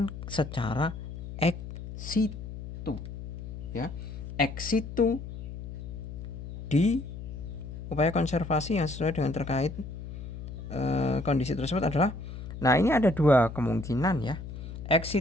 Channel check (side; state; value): left; noise; hum, 10 dB below the sound